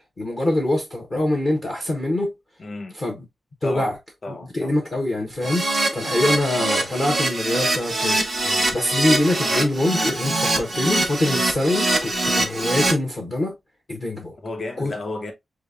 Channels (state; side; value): normal; both; correlation 0.90